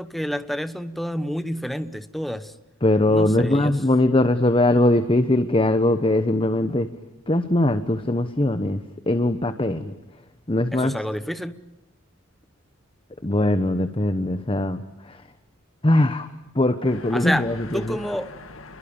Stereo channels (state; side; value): normal; both; correlation 0.75